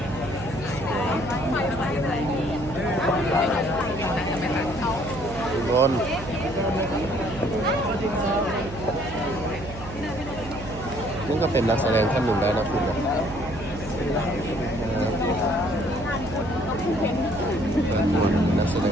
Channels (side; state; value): right; noise; hum, 12 dB below the sound